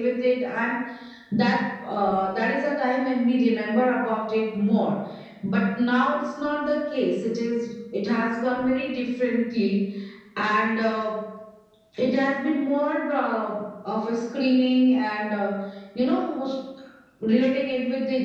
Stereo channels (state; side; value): identical; both; correlation 1.00